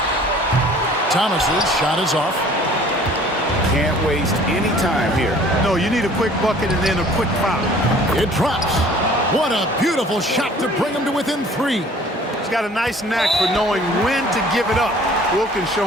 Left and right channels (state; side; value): normal; both; correlation 0.51